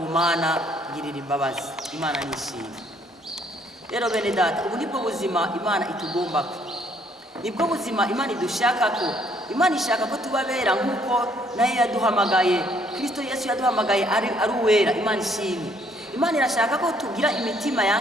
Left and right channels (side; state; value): both; normal; correlation 0.66